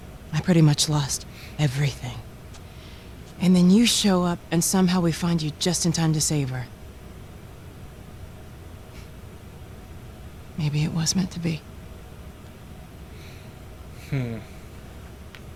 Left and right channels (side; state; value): both; identical; correlation 1.00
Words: I pretty much lost everything. And then you show up, and somehow we find you just in time to save her. Maybe it was meant to be.